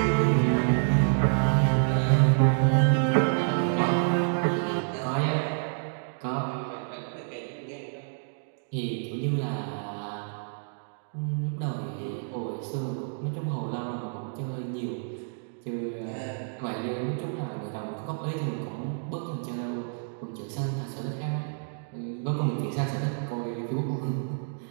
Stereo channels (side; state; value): left; silent; digital silence